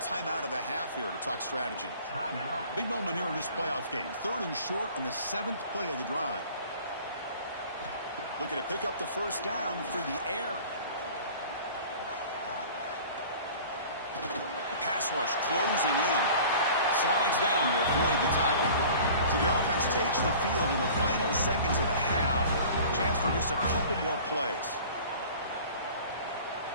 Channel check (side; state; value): both; inverted; correlation -0.44